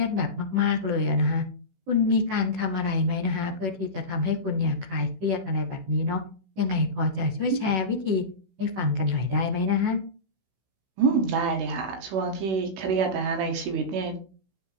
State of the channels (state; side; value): late; left; 16 ms